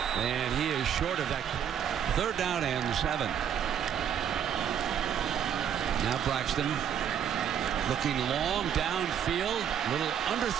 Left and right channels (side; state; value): left; quieter; 9.0 dB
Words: And he is short of that. Third down and 7. Now Braxton looking long downfield. Little